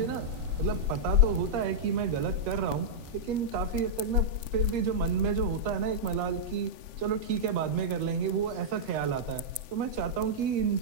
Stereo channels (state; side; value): late; left; 7.7 ms